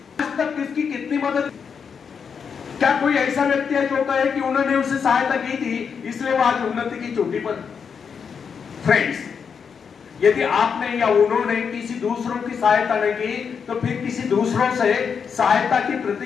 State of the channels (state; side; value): quieter; right; 6.5 dB